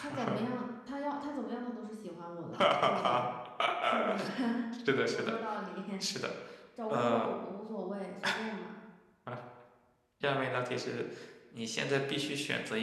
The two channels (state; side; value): identical; both; correlation 1.00